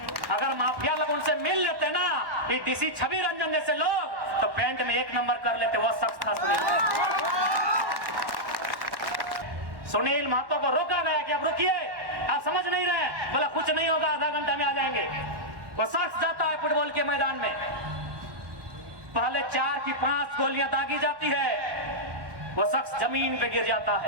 अगर माफिया लोग उनसे मिल लेते ना, ये डीसी छवि रंजन जैसे लोग, तो पेंट में 1 नंबर कर लेते। वो शख्स था सुनील महतो को रोका गया कि अब रुकिए, आप समझ नहीं रहे, बोला कुछ नहीं होगा, आधा घंटा में आ जाएंगे। वो शख्स जाता है फुटबॉल के मैदान में, पहले 4 की 5 गोलियां दागी जाती है, वो शख्स जमीन पे गिर जाता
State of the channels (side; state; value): left; late; 1.1 ms